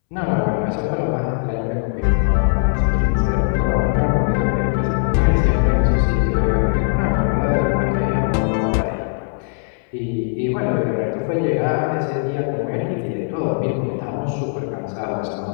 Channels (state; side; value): silent; right; 66 dB below the other